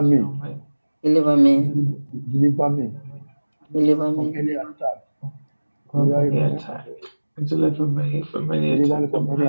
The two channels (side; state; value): both; inverted; correlation -1.00